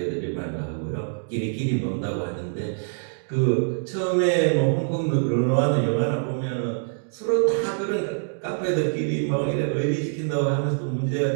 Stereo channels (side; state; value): left; silent; digital silence